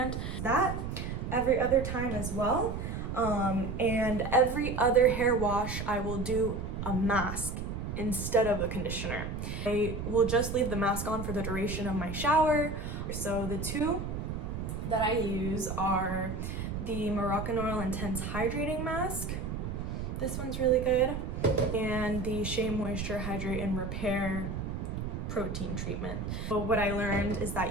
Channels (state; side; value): noise; right; rumble, 5 dB below the sound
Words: That every other time as well. And every other hair wash, I will do a mask instead of a conditioner. I will just leave the mask on for the duration of my shower. So the 2 that I use are the Moroccan Oil Intense Hydrating Mask. This one's really good. And the Shea Moisture Hydrate and Repair Protein Treatment. So what I learned is